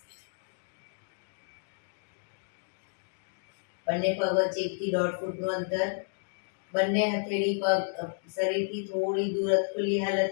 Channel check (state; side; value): silent; right; digital silence